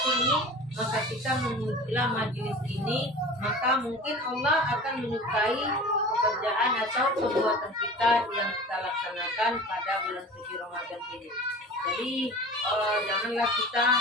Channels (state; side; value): normal; both; correlation 0.38